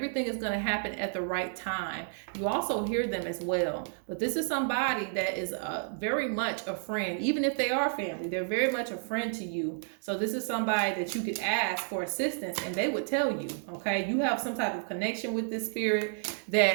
is going to happen at the right time. You also hear them as well. But this is somebody that is very much a friend. Even if they are family, they're very much a friend to you. So this is somebody that you could ask for assistance and they would tell you, okay? You have some type of connection with this spirit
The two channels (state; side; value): silent; left; digital silence